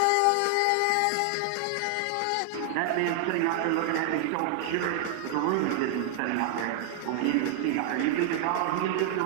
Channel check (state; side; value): different; both; correlation 0.00